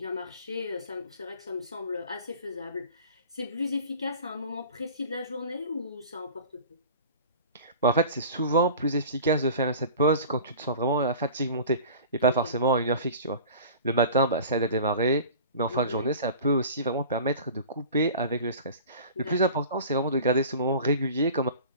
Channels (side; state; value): both; inverted; correlation -0.41